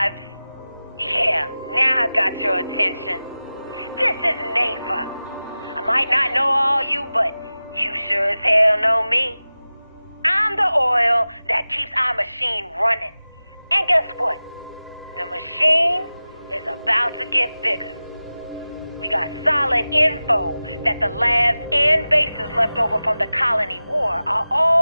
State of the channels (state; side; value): inverted; both; correlation -0.96